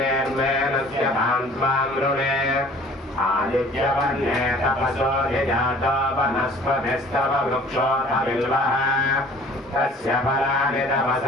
भान्त्वाम् ऋणे आदित्यवर्णे तपसो ह्यजातो वनस्पतिस्तव वृक्षोऽथ बिल्वः तस्य फलानि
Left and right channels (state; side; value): normal; both; correlation 0.50